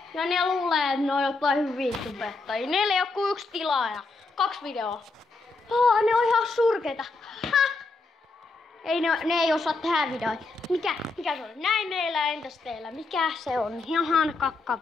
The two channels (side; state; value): right; quieter; 3.6 dB